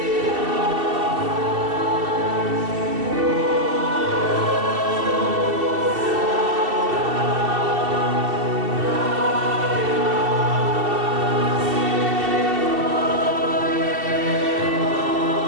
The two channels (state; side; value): late; left; 2.7 ms